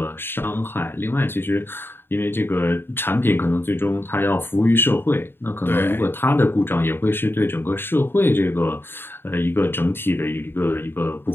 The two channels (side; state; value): right; late; 0.10 ms